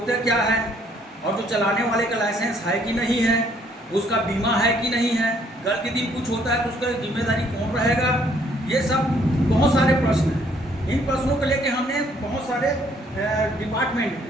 क्या है, और जो चलाने वाले का लाइसेंस है कि नहीं है, उसका बीमा है कि नहीं है। कल के दिन कुछ होता है तो उसका जिम्मेदारी कौन रहेगा? ये सब बहुत सारे प्रश्न हैं। इन प्रश्नों को लेकर हमने बहुत सारे डिपार्टमेंट में,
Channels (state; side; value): normal; both; correlation 0.65